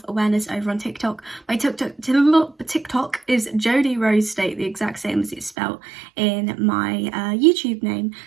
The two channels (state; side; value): drops out; left; at 5.6 s